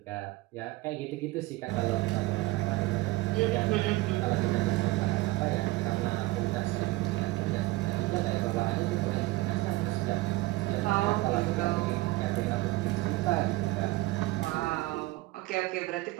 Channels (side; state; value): left; quieter; 19.5 dB